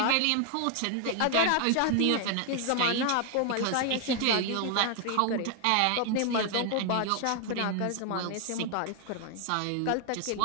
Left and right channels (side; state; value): both; different; correlation 0.00